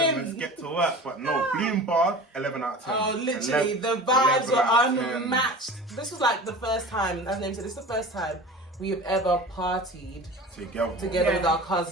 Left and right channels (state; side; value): normal; both; correlation 0.37